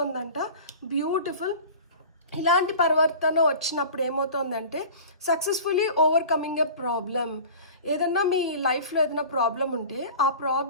బ్యూటిఫుల్. ఇలాంటి పరివర్తన వచ్చినప్పుడు ఏమవుతుందంటే సక్సెస్ఫుల్లీ ఓవర్కమింగ్ ఎ ప్రాబ్లం. ఏదన్నా మీ లైఫ్లో ఏదైనా ప్రాబ్లం ఉంటే ఆ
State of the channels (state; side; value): inverted; both; correlation -0.39